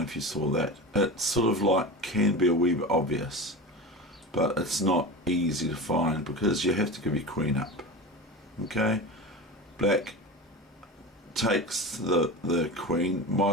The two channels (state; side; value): normal; both; correlation 0.28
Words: if you saw that. It's sort of like, can be a wee bit obvious, but it's not easy to find because you have to give your queen up. Okay, black takes the queen,